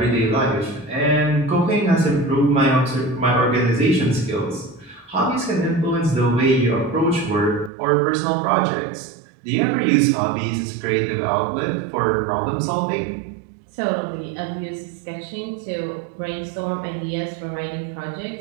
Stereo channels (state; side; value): drops out; left; at 7.7 s